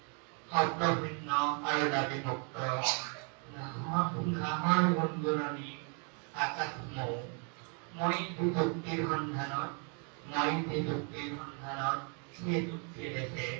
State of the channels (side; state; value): left; quieter; 38.8 dB